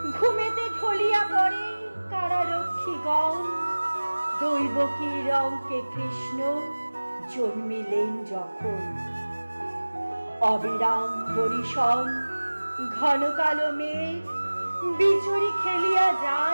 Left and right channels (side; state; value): both; inverted; correlation -1.00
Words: ঘুমেতে ঢলিয়া পড়ে কারারক্ষীগণ, দৈবকীর অঙ্কে কৃষ্ণ জন্মিলেন যখন। অবিরাম বরিশন ঘন কালো মেঘ, বিচুরি খেলিয়া